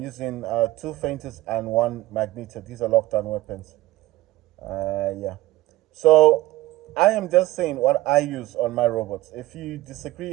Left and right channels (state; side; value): quieter; left; 17.3 dB